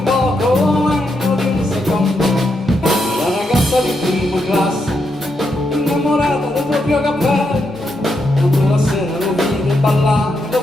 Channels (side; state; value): right; noise; hum, 27 dB below the sound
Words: poco meno di un secondo. La ragazza di prima classe, innamorata del proprio cappello, quando la sera lo vide ballare, lo